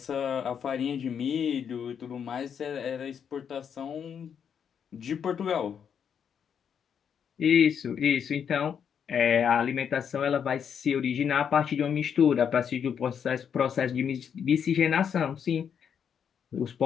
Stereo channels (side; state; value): right; quieter; 7.7 dB